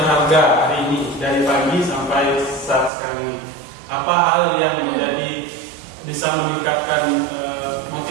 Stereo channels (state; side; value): drops out; left; at 2.9 s